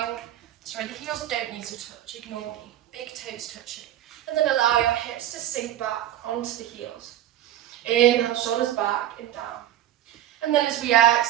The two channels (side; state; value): left; quieter; 12.3 dB